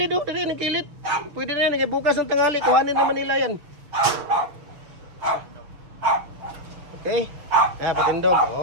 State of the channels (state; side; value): late; left; 6.8 ms